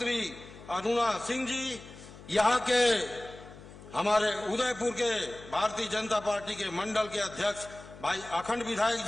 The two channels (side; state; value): left; noise; hum, 18 dB below the sound